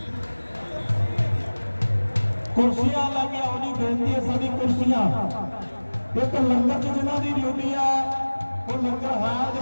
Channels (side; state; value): both; inverted; correlation -1.00